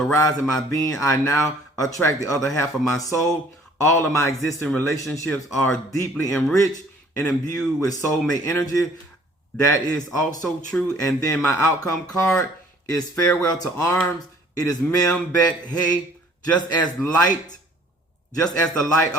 my being, I now attract the other half of my soul. All of my existing relationships are deeply enriched and imbued with soulmate energy. That is also true. And then my outcome card is farewell to arms. It is Mem Bet Hey. Just as the light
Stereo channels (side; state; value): both; normal; correlation 0.55